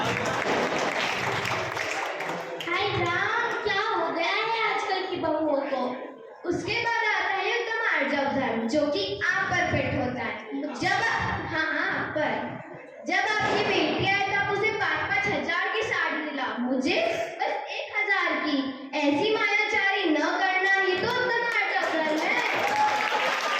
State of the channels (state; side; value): identical; both; correlation 1.00